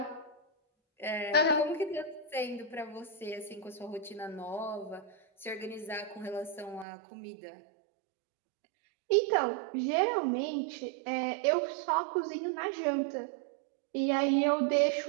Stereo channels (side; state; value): left; drops out; at 6.9 s